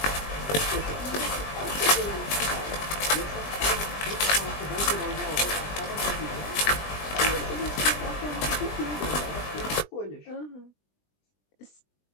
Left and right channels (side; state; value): right; late; 20 ms